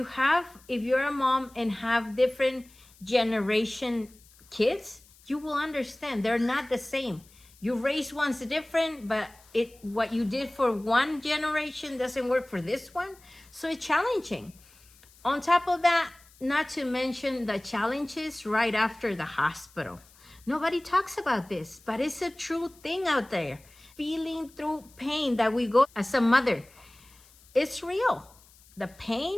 a mom and have different generation kids, you will understand they're not the same. You raise one's different, but what you did for one generation doesn't work for this one. So it's challenging. On top of that, not to mention the challenges right after the hospital. Nobody talks about this, but it's a true thing out there. Feeling through pain that we go as a mother, it's real. The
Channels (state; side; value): noise; left; hiss, 27 dB below the sound